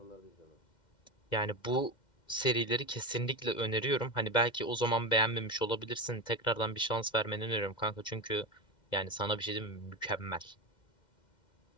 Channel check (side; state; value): right; late; 2.1 ms